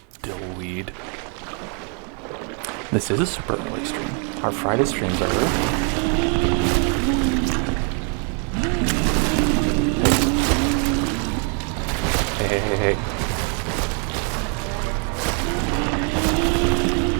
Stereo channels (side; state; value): left; quieter; 39.6 dB